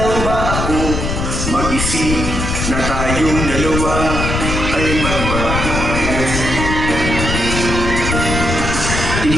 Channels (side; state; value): left; noise; rumble, 2 dB below the sound